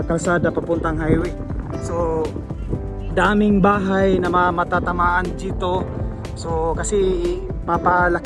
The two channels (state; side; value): identical; both; correlation 1.00